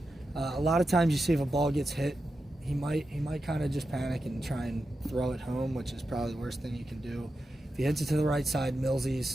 A lot of times you see if a ball gets hit, he might kind of just panic and try and throw it home, which is probably the worst thing you can do. If he hits it to the right side,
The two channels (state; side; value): normal; both; correlation 0.90